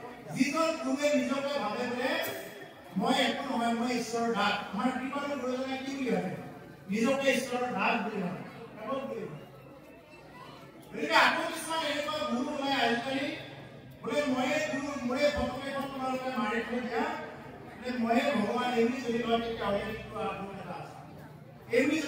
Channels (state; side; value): identical; both; correlation 1.00